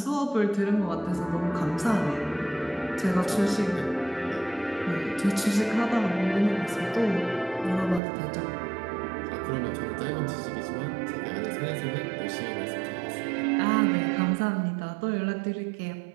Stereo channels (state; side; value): drops out; left; at 8.0 s